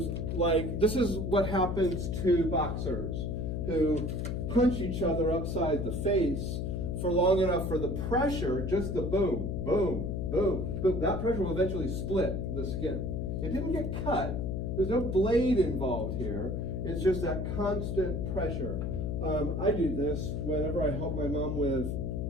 like, this is what happens to boxers who punch each other upside the face for long enough for the pressure, just the boom, boom, boom, boom. That pressure will eventually split the skin. It didn't get cut. There's no blade involved here. It's just that constant pressure. I do this whenever I help my mom with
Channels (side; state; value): left; noise; hum, 2 dB below the sound